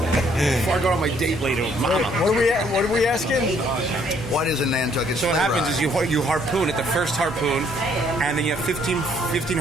I go on my date later with Mama. What are we asking? What is a Nantucket So sleigh what happens ride? is you harpoon at the first harpoon, and then you have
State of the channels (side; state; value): both; normal; correlation 0.66